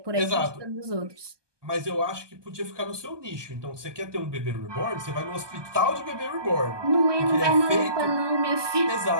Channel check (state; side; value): late; left; 1.2 ms